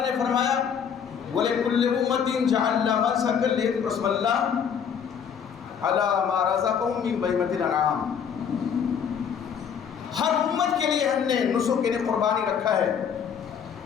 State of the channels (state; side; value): quieter; right; 7.5 dB